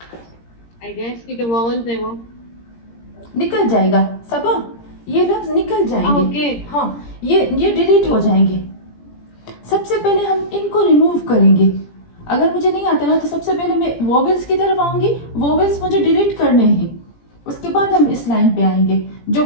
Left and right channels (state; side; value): late; right; 17 ms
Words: आई गेस कि जो वोवेल्स है वो। निकल जाएगा सबा, ये लफ्ज निकल जाएंगे, ओके। हाँ, ये डिलीट हो जाएंगे। सबसे पहले हम इनको रिमूव करेंगे। अगर मुझे नहीं आता ना तो सबसे पहले मैं वोवेल्स की तरफ आऊंगी, वोवेल्स मुझे डिलीट करने हैं, उसके बाद हम इस लाइन पे आएंगे। जो